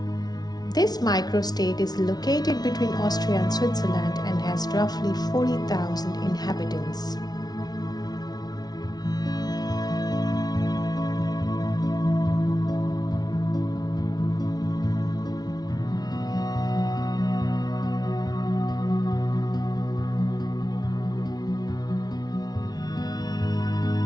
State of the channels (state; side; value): late; right; 0.19 ms